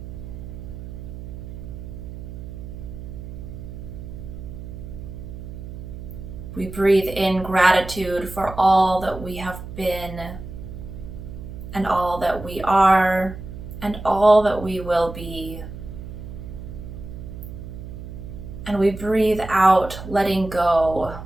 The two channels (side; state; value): right; noise; hum, 11 dB below the sound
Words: We breathe in gratitude for all that we have been, and all that we are, and all that we will be. And we breathe out, letting go.